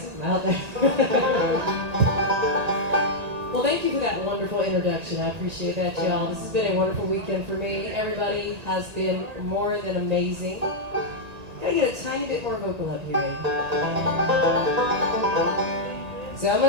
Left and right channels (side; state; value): left; late; 1.8 ms